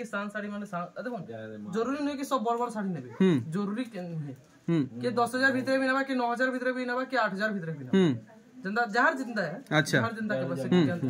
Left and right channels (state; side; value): identical; both; correlation 1.00